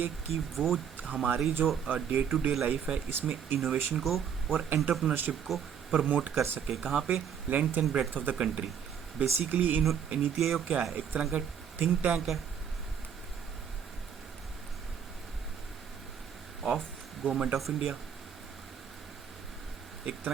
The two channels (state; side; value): quieter; left; 7.8 dB